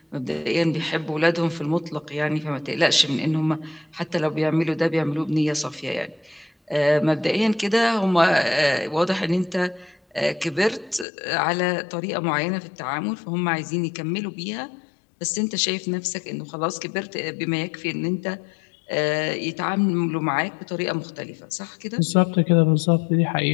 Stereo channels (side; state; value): right; drops out; at 11.1 s